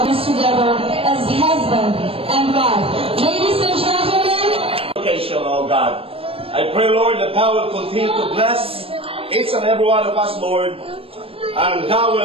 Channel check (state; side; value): late; left; 0.27 ms